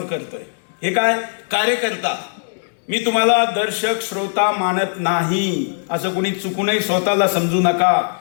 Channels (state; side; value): silent; right; digital silence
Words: करतोय हे काय, कार्यकर्ता. मी तुम्हाला दर्शक श्रोता मानत नाही, असं कोणी चुकूनही स्वतःला समजू नका.